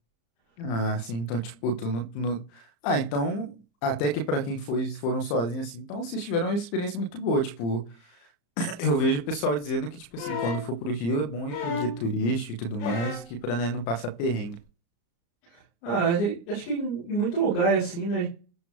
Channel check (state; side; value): late; right; 35 ms